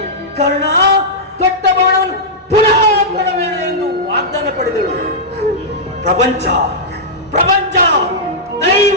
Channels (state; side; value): normal; both; correlation -0.11